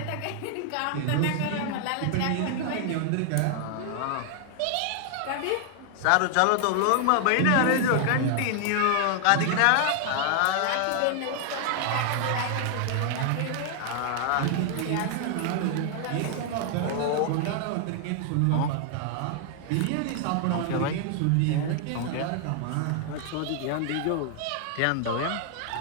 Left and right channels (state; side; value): different; both; correlation 0.00